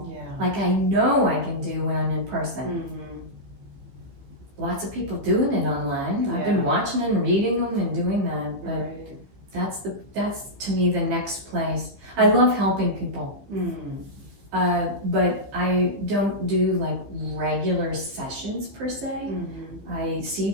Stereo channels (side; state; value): left; late; 15 ms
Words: like I know I can do when I'm in person. Lots of people doing it online. I've been watching and reading them and doing that, but that's to me the next place. I love helping people. But I don't do like regular sessions per se. I see